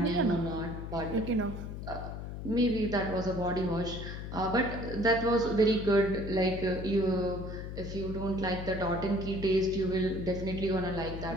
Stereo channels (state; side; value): noise; left; hum, 7 dB below the sound